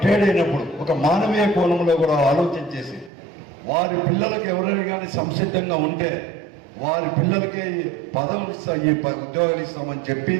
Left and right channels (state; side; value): drops out; left; at 3.1 s